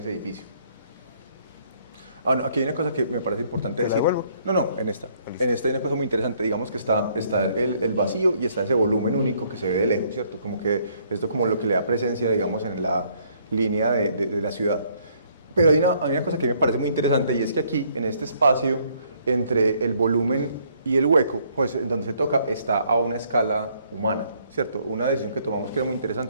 edificio. Ah, no, aquí hay una cosa que me parece importante decir. devuelvo? No, en esta. En esta hay una cosa muy interesante. Digamos que está el vacío y está ese volumen único que se ve de lejos, ¿cierto? Como que esto como lo que le da presencia, digamos, en la línea de la ciudad. Pero hay una cosa que me parece muy interesante y es que aquí, en este espacio, entre el volumen y el hueco, pues en donde se toca, está a una escala humana, ¿cierto? Una decisión que tomamos que era muy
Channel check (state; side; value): inverted; both; correlation -0.66